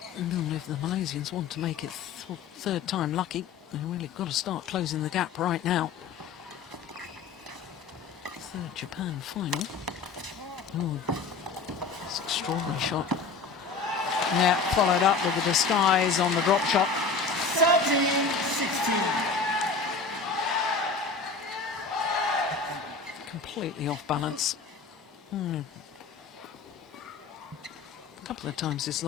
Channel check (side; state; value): right; quieter; 4.7 dB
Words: And if the Malaysians want to make it third time lucky, they've really got to start closing the gap right now. Third Japan final. Oh, it's an extraordinary shot. Yeah, followed up with the disguise on the drop shot. 13-16. Completely off balance. A couple of times he's